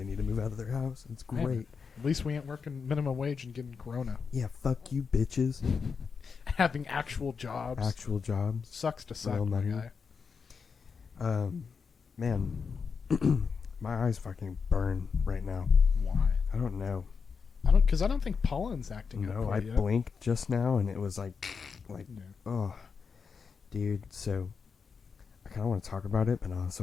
need to move out of their house. It's great. At least we ain't working minimum wage and getting corona. Yeah, fuck you, bitches. Having actual jobs. Actual jobs. Sucks to suck. Real money. Guy. Man, my eyes fucking burn right now. Why? I don't know. Because I don't think pollen's acting. No, up I yet. blinked just now and it was like, Yeah. oh, dude. So I kind of want to talk about it, but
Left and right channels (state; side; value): quieter; right; 5.6 dB